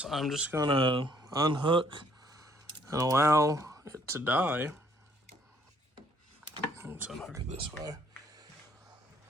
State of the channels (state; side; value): normal; both; correlation 0.65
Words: I'm just gonna unhook and allow it to die. Let's unhook it this way.